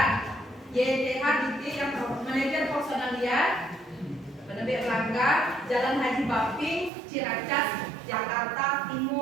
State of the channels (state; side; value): drops out; left; at 6.9 s